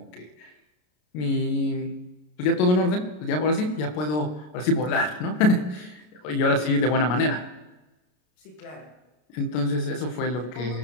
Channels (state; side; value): late; right; 33 ms